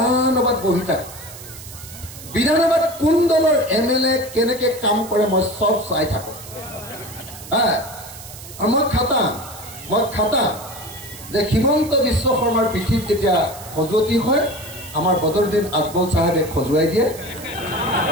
বহি থাকো বিধানসভাত কোন দলৰ এমএলএ কেনেকে কাম কৰে মই সব চাই থাকো মই খাটাম যে হিমন্ত বিশ্ব শৰ্মাৰ পিঠিত যেতিয়া খজুৱতি হয় আমাৰ বদৰুদ্দিন আজমল সাহেবে খজুৱাই দিয়ে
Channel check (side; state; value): right; noise; hiss, 15 dB below the sound